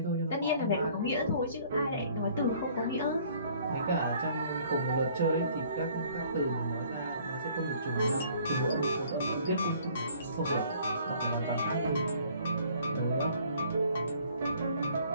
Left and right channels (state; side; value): inverted; both; correlation -0.57